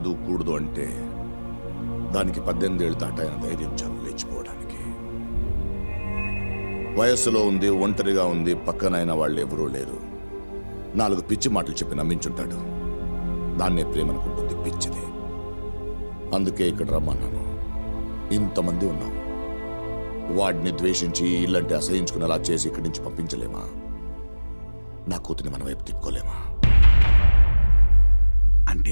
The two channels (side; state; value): both; inverted; correlation -1.00